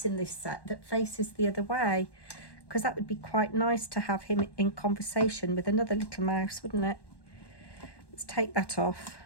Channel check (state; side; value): late; right; 1.1 ms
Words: in this set that faces the other way, because that would be quite nice to have him in conversation with another little mouse, wouldn't it? Let's take that off.